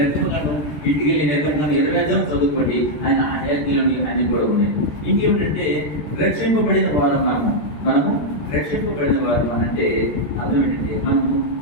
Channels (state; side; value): late; right; 14 ms